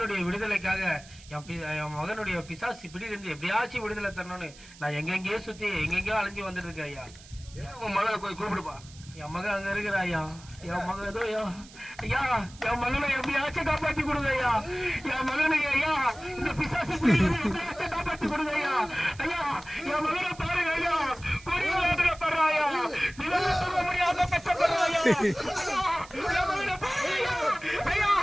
விடுதலைக்காக என் மகனுடைய பிசாசு பிடியிலிருந்து எப்படியாச்சும் விடுதலை தரணும்னு நான் எங்கெங்கேயோ சுத்தி எங்கெங்கயோ அலைஞ்சு வந்துட்டு இருக்கேன் ஐயா. உன் மகளை போய் கூப்பிடுப்பா. என் மகன் அங்க இருக்கிற ஐயா. என் மகன் ஏதோ ஐயா என் மகனை எப்படியாச்சும் காப்பாத்தி கொடுங்க ஐயா. என் மகனை ஐயா இந்த பிசாசு எப்படியாச்சும் காப்பாத்தி கொடுங்க ஐயா. ஐயா என் மகனை பாருங்க ஐயா, கொடிய வேதனைப்படுறா ஐயா, நிலவு சொல்ல முடியாத கஷ்டப்படுறா ஐயா. என் மகனை பாருங்க ஐயா. ஐயா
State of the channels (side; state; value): right; noise; hiss, 21 dB below the sound